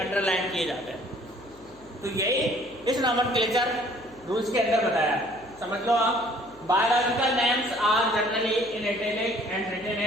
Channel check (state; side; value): noise; left; hum, 26 dB below the sound